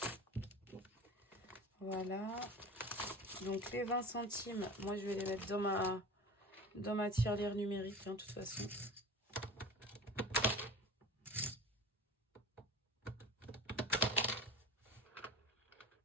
Voilà. Donc les 20 centimes, moi je vais les mettre dans ma tirelire numérique, hein, de toute façon.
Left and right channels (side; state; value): both; normal; correlation 0.34